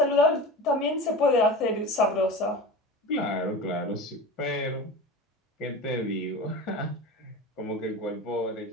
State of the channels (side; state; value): both; normal; correlation 0.31